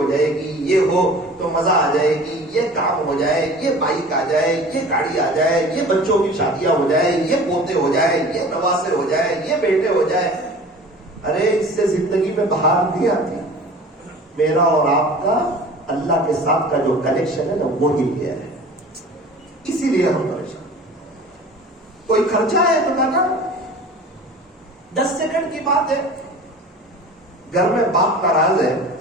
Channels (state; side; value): normal; both; correlation 0.42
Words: جائے گی, یہ ہو تو مزہ آ جائے گی, یہ کام ہو جائے, یہ بائک آ جائے, یہ گاڑی آ جائے, یہ بچوں کی شادیاں ہو جائے, یہ پوتے ہو جائے, یہ نواسے ہو جائے, یہ بیٹے ہو جائے. ارے اس سے زندگی میں بہار نہیں آتی. میرا اور آپ کا اللہ کے ساتھ کا جو کنیکشن ہے نا, وہ ہل گیا ہے, اسی لیے ہم پریشان. کوئی خرچہ ہے تو کہنا 10 سیکنڈ کی بات ہے. گھر میں باپ ناراض ہے,